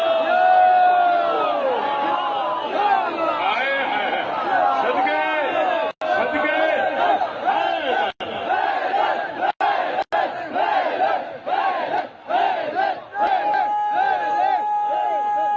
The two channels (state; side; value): identical; both; correlation 1.00